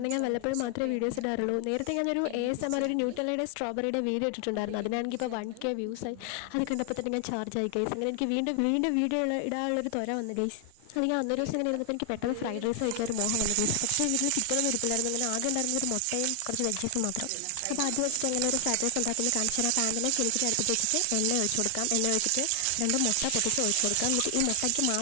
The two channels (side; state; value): both; different; correlation 0.00